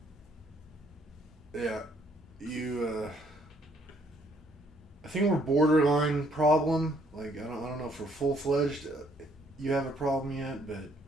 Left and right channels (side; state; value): both; normal; correlation 0.66